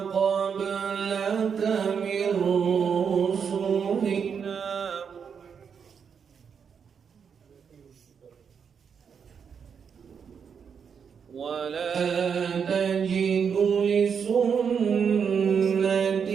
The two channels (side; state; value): left; quieter; 6.8 dB